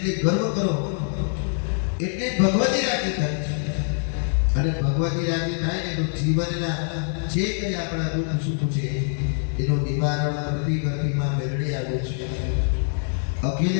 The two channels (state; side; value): silent; right; 62 dB below the other